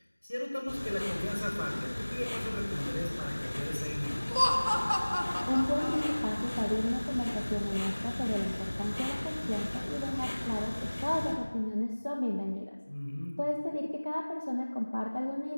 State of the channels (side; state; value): both; inverted; correlation -1.00